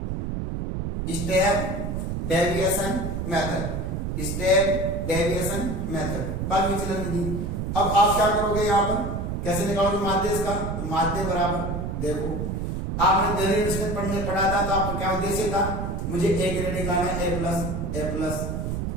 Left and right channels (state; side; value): noise; right; rumble, 3 dB below the sound